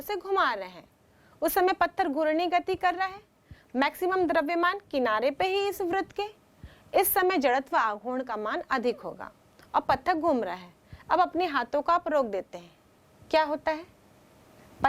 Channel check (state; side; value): identical; both; correlation 1.00